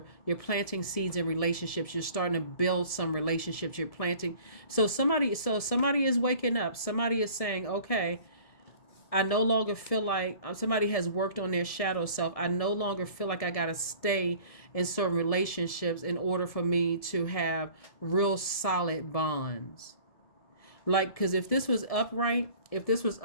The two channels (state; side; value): late; right; 1.7 ms